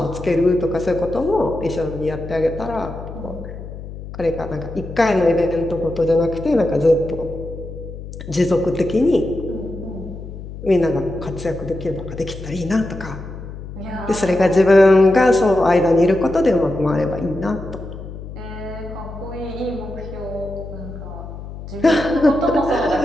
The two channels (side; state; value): left; noise; hum, 11 dB below the sound